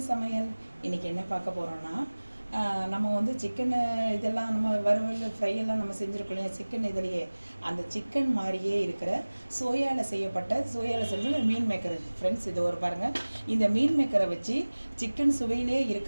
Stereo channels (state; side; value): inverted; both; correlation -1.00